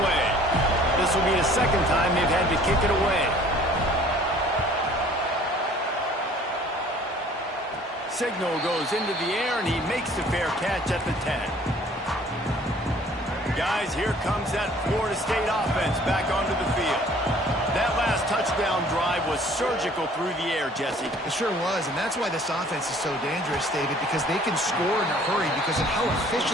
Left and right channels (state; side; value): normal; both; correlation 0.54